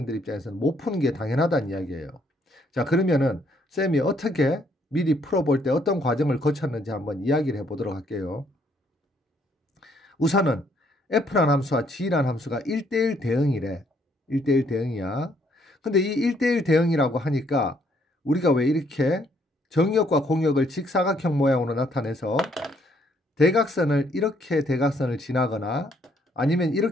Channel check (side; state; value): both; normal; correlation 0.68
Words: 입장에서는 못 푸는 게 당연하다는 이야기예요. 자, 그러면은 쌤이 어떻게 미리 풀어볼 때 어떤 과정을 거쳤는지 한번 이야기를 해보도록 할게요. 우선은 f라는 함수와 g라는 함수가 1대1 대응이래. 1대1 대응이야. 근데 이 1대1 대응이라고 하니까 우리가 왜 이렇게 정역과 공역을 직사각형 모양으로 나타내서 대각선을 이렇게 대각선을 지나거나 아니면